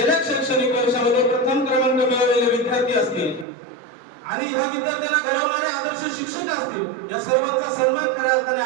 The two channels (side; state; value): left; drops out; at 3.5 s